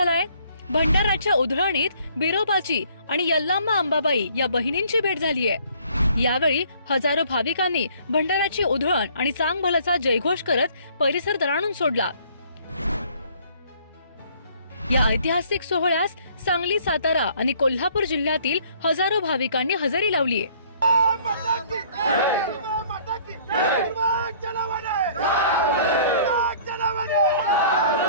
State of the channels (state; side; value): inverted; both; correlation -0.58